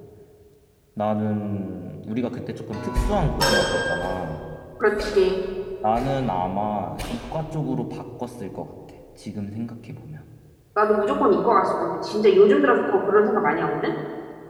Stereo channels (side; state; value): both; identical; correlation 1.00